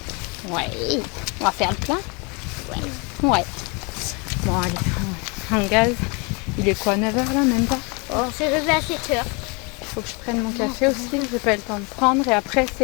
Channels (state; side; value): quieter; right; 31.2 dB